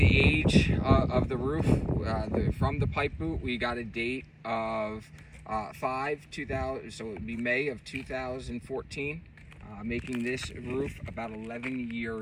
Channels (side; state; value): both; identical; correlation 1.00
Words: age of the roof. From the pipe boot, we got a date of 5/2000, so it would be May of 2014, making this roof about 11